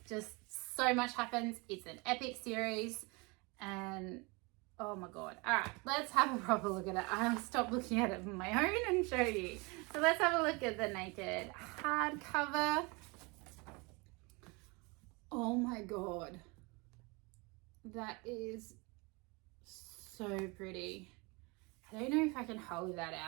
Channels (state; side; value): quieter; left; 27.8 dB